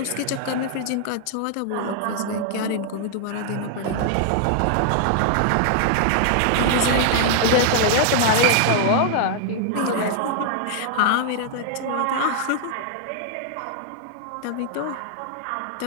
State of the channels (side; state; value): both; different; correlation 0.00